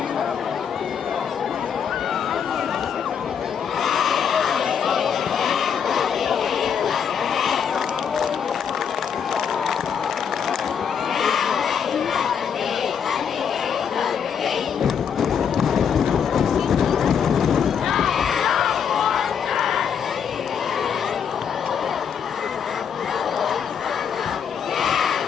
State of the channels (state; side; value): quieter; right; 7.5 dB